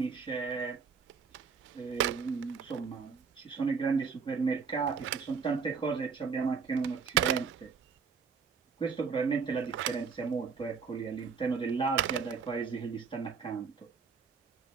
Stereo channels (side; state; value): left; quieter; 5.7 dB